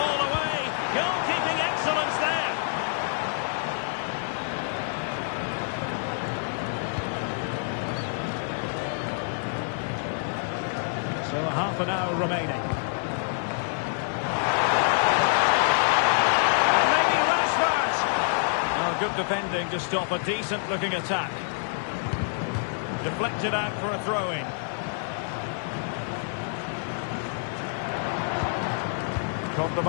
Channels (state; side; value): silent; right; 58 dB below the other